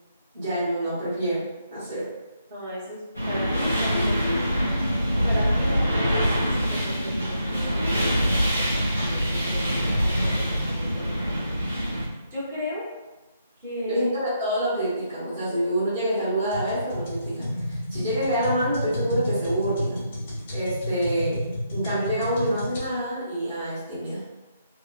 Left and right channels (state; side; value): inverted; both; correlation -0.78